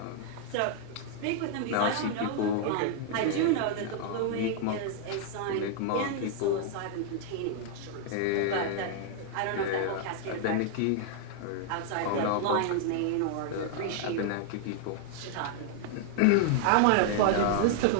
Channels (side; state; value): both; different; correlation 0.00